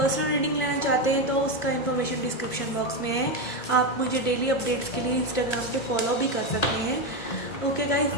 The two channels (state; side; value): late; right; 1.5 ms